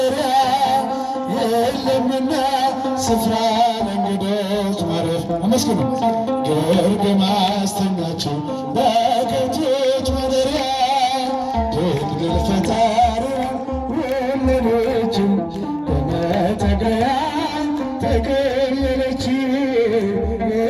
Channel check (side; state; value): both; identical; correlation 1.00